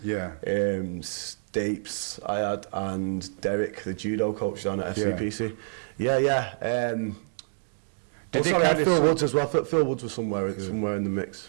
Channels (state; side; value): silent; left; digital silence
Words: Yeah. Stapes I had, and Derek, the judo coach down at FCPC. Yeah. I had Phil Woods as well. Phil Woods was somewhere in the